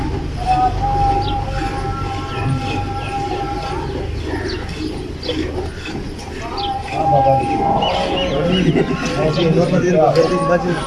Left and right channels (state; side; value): identical; both; correlation 1.00